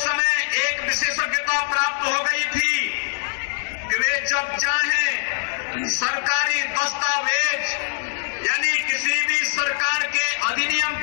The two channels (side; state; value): right; silent; 64 dB below the other